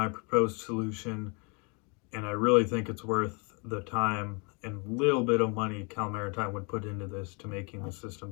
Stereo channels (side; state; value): right; quieter; 33.0 dB